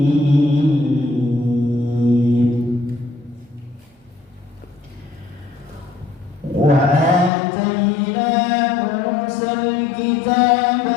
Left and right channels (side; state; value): right; drops out; at 7.3 s